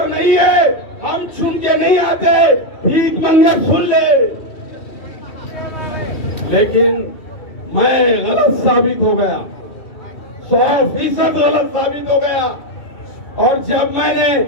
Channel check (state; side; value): late; right; 2.7 ms